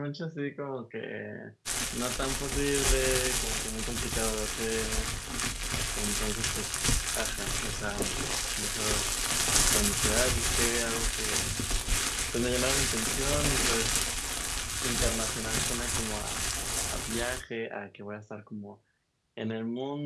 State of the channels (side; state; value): both; identical; correlation 1.00